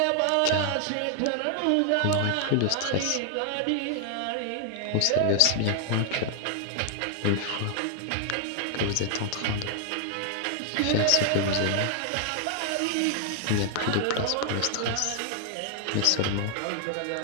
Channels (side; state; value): both; different; correlation 0.00